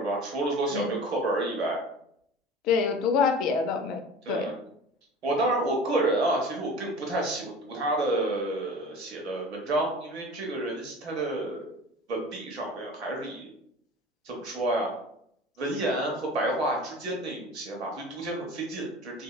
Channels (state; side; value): normal; both; correlation 0.38